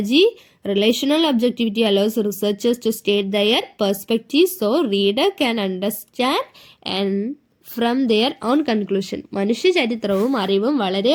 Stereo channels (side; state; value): both; identical; correlation 1.00